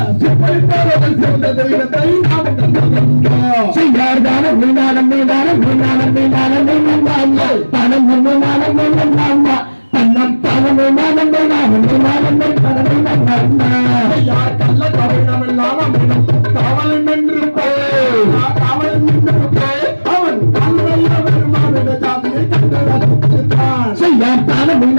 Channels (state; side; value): inverted; both; correlation -1.00